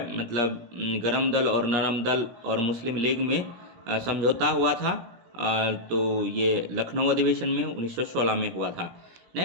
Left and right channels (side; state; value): left; late; 17 ms